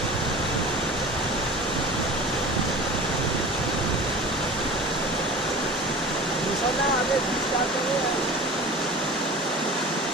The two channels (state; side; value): normal; both; correlation 0.38